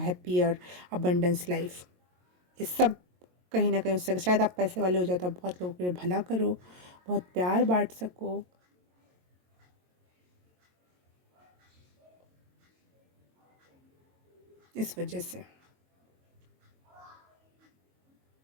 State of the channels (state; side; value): late; left; 22 ms